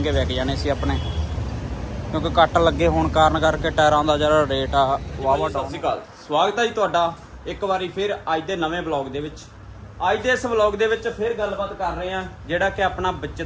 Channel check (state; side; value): identical; both; correlation 1.00